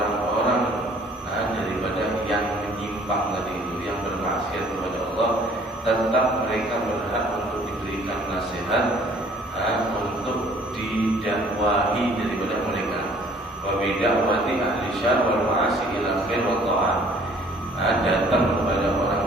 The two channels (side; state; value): both; normal; correlation 0.56